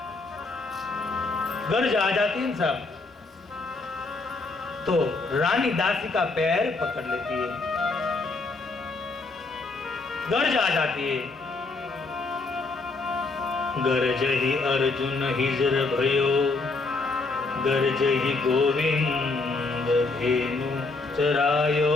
गर्ज आ जाती है सब तो रानी दासी का पैर पकड़ लेती है, गर्ज आ जाती है। गर्ज ही अर्जुन हिजर भयो गर्ज ही गोविंद धेनु चरायो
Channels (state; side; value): quieter; right; 3.6 dB